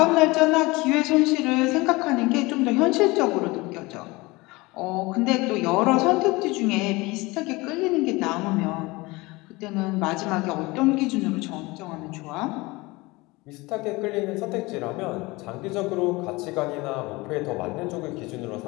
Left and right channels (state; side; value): quieter; right; 22.9 dB